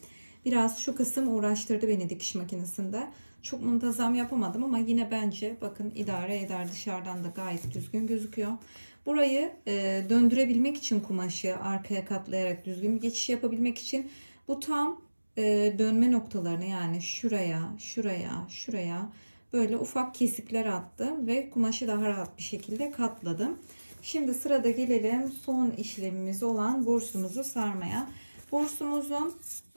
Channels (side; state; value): both; inverted; correlation -1.00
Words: biraz şu kısım uğraştırdı beni dikiş makinesinde. Çok muntazam yapamadım ama yine bence bakın idare eder, dışarıdan da gayet düzgün gözüküyor. Burayı döndürebilmek için kumaşı arkaya katlayarak düzgün bir geçiş yapabilmek için bu tam dönme noktalarını yani şuraya, şuraya, şuraya böyle ufak kesikler attım ve kumaşı daha rahat bir şekilde katladım. Şimdi sırada gelelim son işlemimiz olan bursumuzu sarmaya. Bursumuzun